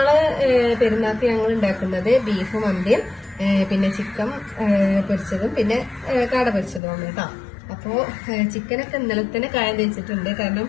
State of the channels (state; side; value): drops out; right; at 6.8 s